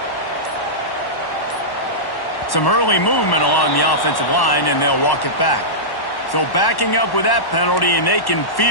Some early movement along the offensive line, and they'll walk it back. So backing up with that penalty, and they can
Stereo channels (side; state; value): right; late; 1.1 ms